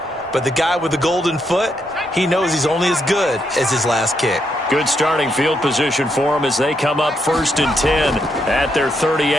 but the guy with the golden foot, he knows he's only as good as his last kick. Good starting field position for him as they come up 1st and 10 at their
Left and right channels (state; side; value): normal; both; correlation 0.78